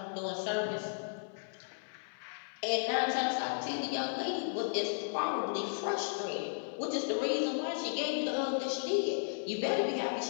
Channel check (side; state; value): right; silent; 55 dB below the other